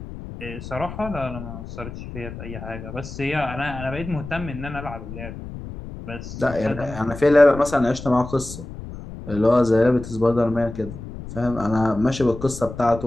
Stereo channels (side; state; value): left; noise; rumble, 11 dB below the sound